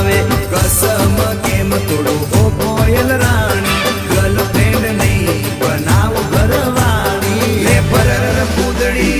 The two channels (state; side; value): identical; both; correlation 1.00